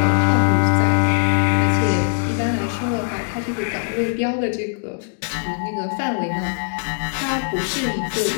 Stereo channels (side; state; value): right; silent; digital silence